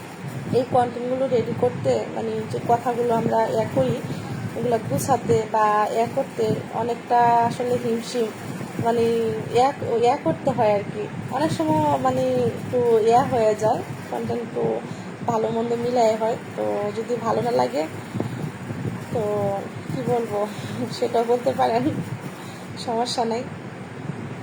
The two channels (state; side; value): identical; both; correlation 1.00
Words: এই কন্টেন্টগুলো রেডি করতে, যে কথাগুলো আমরা করি এগুলো গুছাতে বা করতে অনেকটা আসলে হিমশিম, করতে হয় আর কি। অনেক সময় একটু হয়ে যায়, কন্টেন্ট একটু ভালো মন্দ মিলাই হয়। তো যদি ভালো না লাগে তো কি বলবো সেটা বলতে পারেন, সমস্যা নেই।